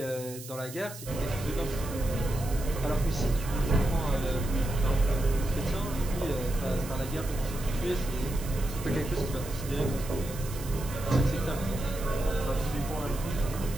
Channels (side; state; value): right; noise; hiss, 13 dB below the sound